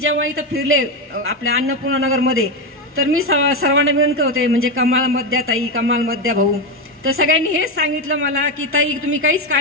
इथं फिरले आपल्या अन्नपूर्णा नगरमध्ये तर मी सर्वांना विनंती होते, म्हणजे कमाल मध्या ताई, कमाल मध्या भाऊ, तर सगळ्यांनी हेच सांगितलं मला की ताई तुम्ही काहीच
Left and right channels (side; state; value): both; normal; correlation 0.11